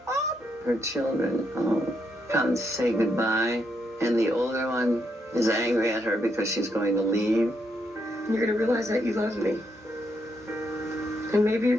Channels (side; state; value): both; normal; correlation 0.78